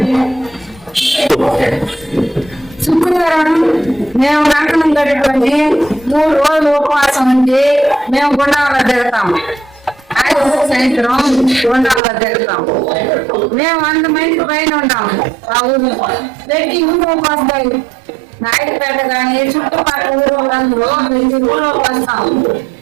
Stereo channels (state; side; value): drops out; left; at 12.0 s